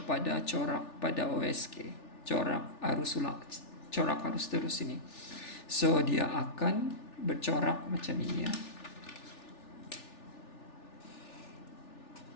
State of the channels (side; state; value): right; late; 3.4 ms